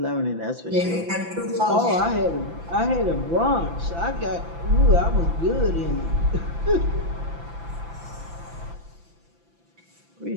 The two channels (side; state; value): left; late; 5.9 ms